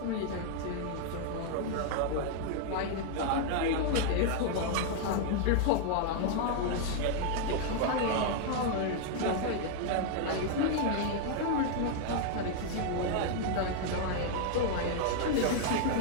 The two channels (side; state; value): both; different; correlation 0.00